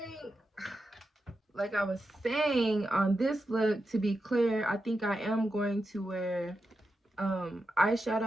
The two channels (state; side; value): normal; both; correlation 0.88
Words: like I was saying, on this look, to be clear, I think I am going to wear